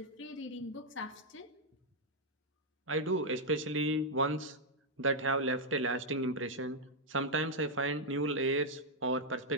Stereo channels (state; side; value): normal; both; correlation -0.04